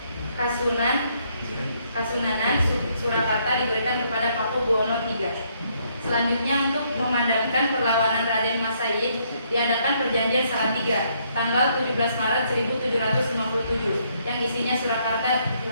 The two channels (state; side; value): inverted; both; correlation -0.71